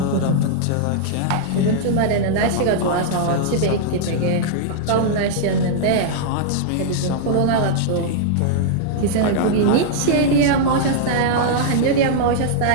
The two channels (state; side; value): different; both; correlation -0.01